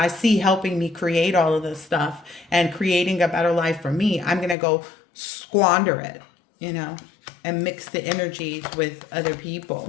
see helping me create all of this stuff and creating a better life for me, I'm going to go squander it, and mix the energies with other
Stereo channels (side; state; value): right; drops out; at 4.5 s